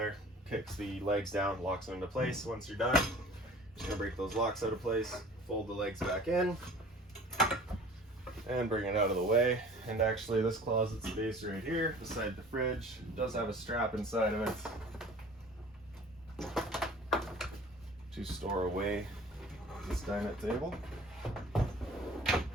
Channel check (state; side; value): normal; both; correlation 0.46